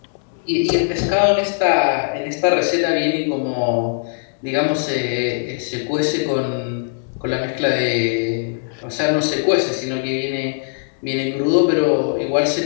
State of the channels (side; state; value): right; silent; digital silence